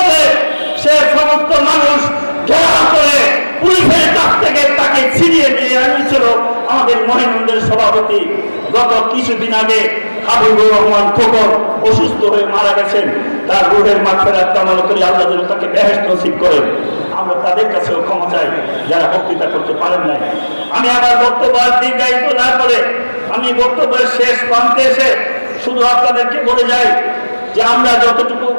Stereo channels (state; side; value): inverted; both; correlation -1.00